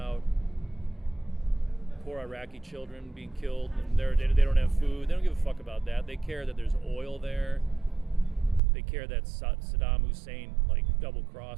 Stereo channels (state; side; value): drops out; left; at 8.6 s